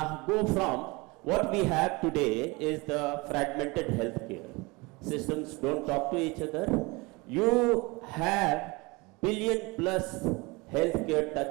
from what we have today is the fragmented healthcare. Systems don't talk to each other. You have billion plus healthcare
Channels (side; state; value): left; quieter; 25.2 dB